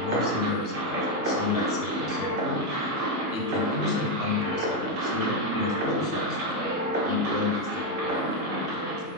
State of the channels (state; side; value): late; left; 1.2 ms